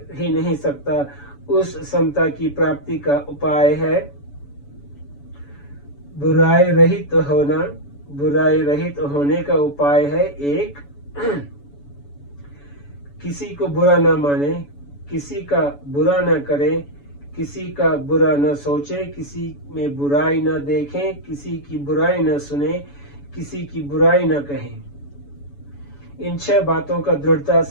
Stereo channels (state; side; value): late; right; 7.0 ms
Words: ही नहीं सकता, उस समता की प्राप्ति का उपाय है बुराई रहित होना, बुराई रहित होने का उपाय है एक, किसी को बुरा न माने, किसी का बुरा न करे, किसी का बुरा न सोचे, किसी में बुराई न देखें, किसी की बुराई न सुने, किसी की बुराई न कहें। इन 6 बातों का दृढ़ता